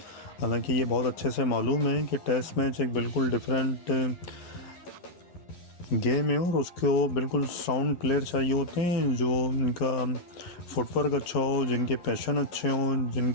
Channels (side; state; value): right; late; 11 ms